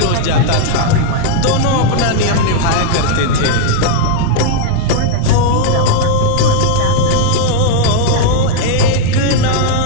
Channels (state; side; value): different; both; correlation -0.01